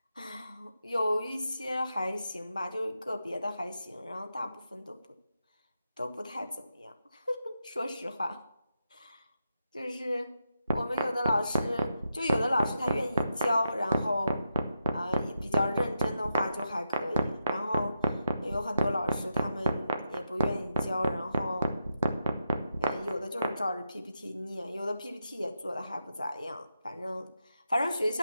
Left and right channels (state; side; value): inverted; both; correlation -0.85